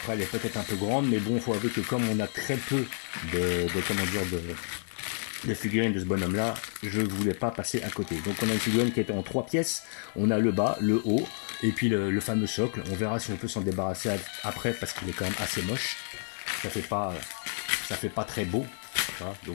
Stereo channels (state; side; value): silent; right; 58 dB below the other